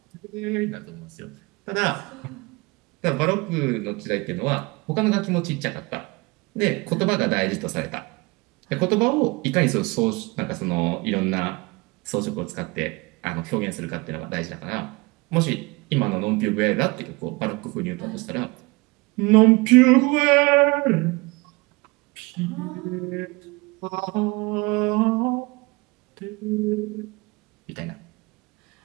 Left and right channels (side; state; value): left; quieter; 25.1 dB